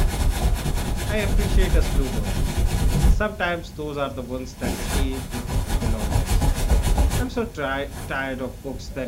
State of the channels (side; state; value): both; identical; correlation 1.00